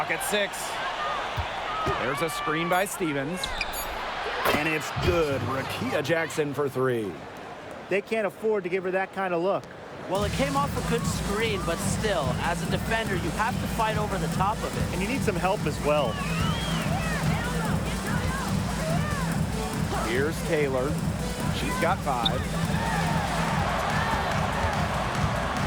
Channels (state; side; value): identical; both; correlation 1.00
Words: at 6. There's a screen by Stevens. And it's good. Rakita Jackson for three. They can't afford to give her that kind of look. Well, it came off a good screen, but still, as a defender, you have to fight over the top of it. And you need some help as well. Here's Taylor. She's got 5.